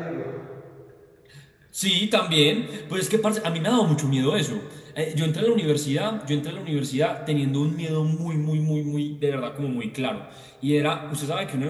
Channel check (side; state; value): both; identical; correlation 1.00